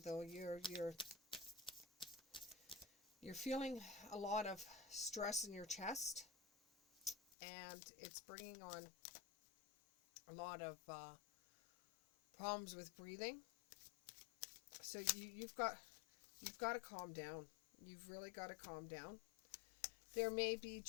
though, you're feeling a lot of stress in your chest, and it's bringing on a lot of problems with breathing. So you've got to calm down. You've really got to calm down. There may be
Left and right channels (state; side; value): drops out; right; at 7.2 s